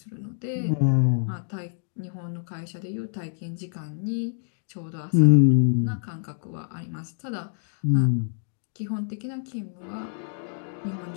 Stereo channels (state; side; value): silent; right; digital silence